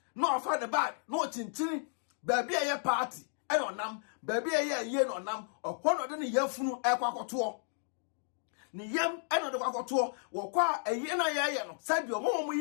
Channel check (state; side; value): silent; right; digital silence